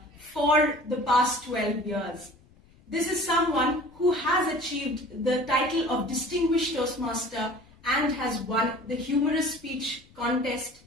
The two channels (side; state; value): left; noise; rumble, 28 dB below the sound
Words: for the past 12 years. This is someone who has achieved the title of Distinguished Toastmaster and has won the humorous speech contest